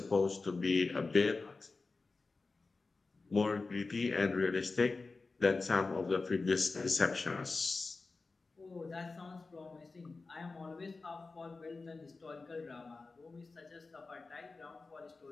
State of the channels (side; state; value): right; quieter; 3.9 dB